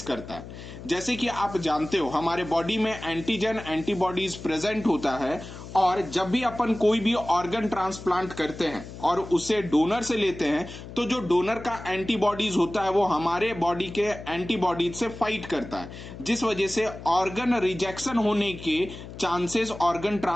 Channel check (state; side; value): noise; left; hum, 13 dB below the sound